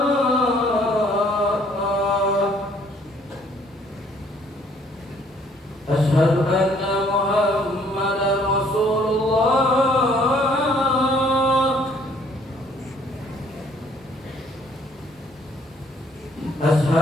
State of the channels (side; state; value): both; normal; correlation 0.61